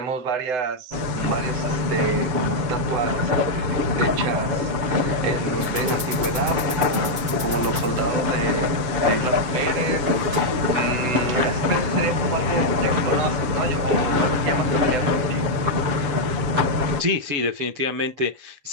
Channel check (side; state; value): left; late; 7.3 ms